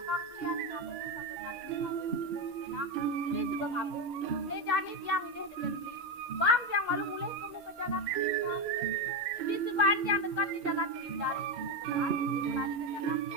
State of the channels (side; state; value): both; normal; correlation 0.11